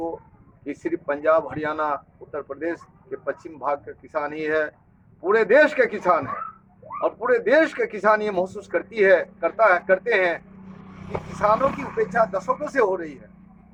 ये सिर्फ पंजाब, हरियाणा, उत्तर प्रदेश के पश्चिम भाग का किसान ही है, पूरे देश के किसान है। और पूरे देश के किसान ये महसूस करते हैं कि किसानों की उपेक्षा दशकों से हो रही है।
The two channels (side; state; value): both; identical; correlation 1.00